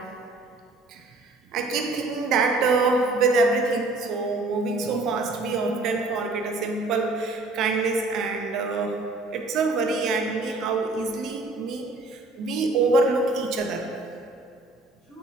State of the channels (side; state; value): left; quieter; 3.1 dB